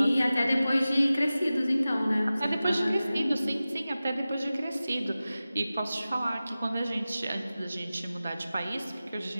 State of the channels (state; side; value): inverted; both; correlation -0.96